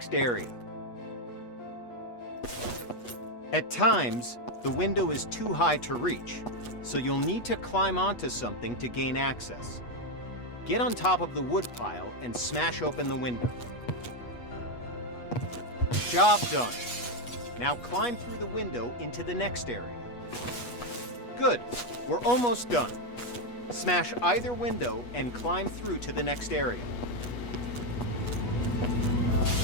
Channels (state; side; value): late; right; 8.3 ms